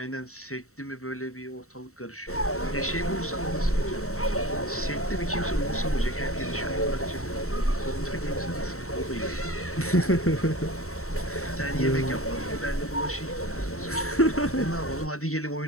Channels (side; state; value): right; late; 0.64 ms